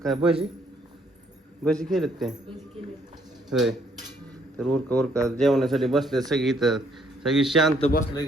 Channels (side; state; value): both; normal; correlation 0.68